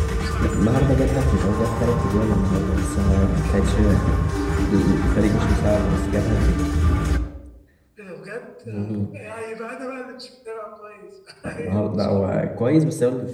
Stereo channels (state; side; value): identical; both; correlation 1.00